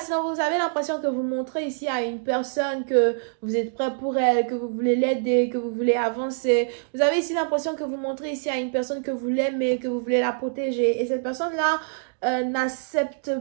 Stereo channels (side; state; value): left; silent; digital silence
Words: vous avez l'impression que vous montrez ici à une personne que vous êtes prêt pour elle, que vous voulez l'aider, que vous voulez avancer. Vous avez ici l'impression que vous montrez ici à une personne que vous l'aimez, que vous voulez la protéger. Et cette personne-là n'accepte